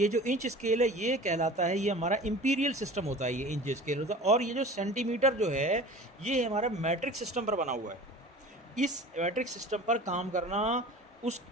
जो इंच स्केल है ये कहलाता है, ये हमारा इंपीरियल सिस्टम होता है, ये इंच स्केल होता है। और ये जो सेंटीमीटर जो है ये हमारा मैट्रिक सिस्टम पर बना हुआ है। इस मैट्रिक सिस्टम पर काम करना उस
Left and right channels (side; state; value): both; normal; correlation 0.40